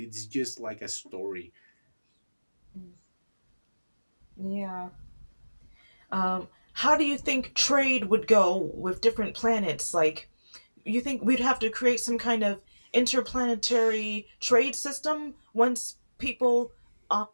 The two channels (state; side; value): inverted; both; correlation -1.00